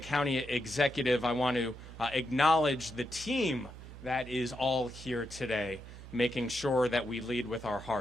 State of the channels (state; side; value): noise; right; hum, 14 dB below the sound